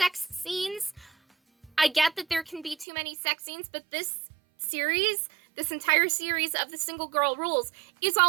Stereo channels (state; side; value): drops out; left; at 2.9 s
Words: scenes. I get that there can be too many sex scenes, but this entire series of the Single Girl Rules is